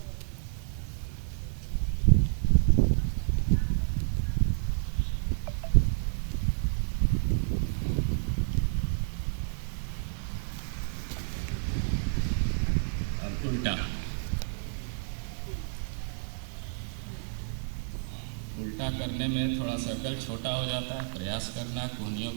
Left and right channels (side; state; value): left; silent; 58 dB below the other